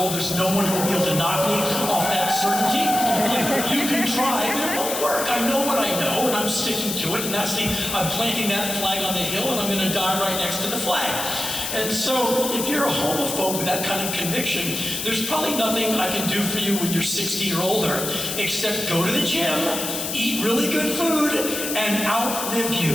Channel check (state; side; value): noise; left; hiss, 4 dB below the sound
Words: There's no one who will be able to knock me off that certainty. You can try, but it won't work. I know what I know, and I'm sticking to it, and I'm planting that flag on the hill, and I'm going to die right next to the flag. And so, if you're a homophobe with that kind of conviction, there's probably nothing I can do for you when you're 60 or older, except go to the gym, eat really good food, and outlive